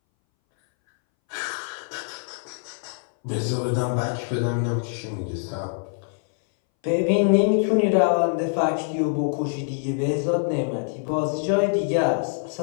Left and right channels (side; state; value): right; silent; 61 dB below the other